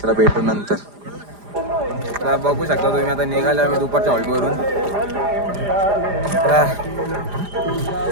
चला भेटू नंतर. तर बघू शकता तुम्ही आता निघाले आम्ही दुपारच्या हॉल्टवरून.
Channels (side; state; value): left; late; 4.9 ms